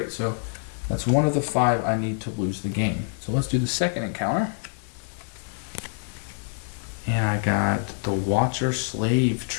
So that's 1 of the 5 I need to lose the game. So let's do the second encounter. And I got the Watcher Slave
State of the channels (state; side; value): silent; right; digital silence